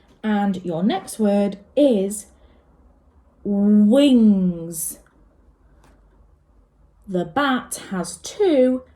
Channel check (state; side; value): identical; both; correlation 1.00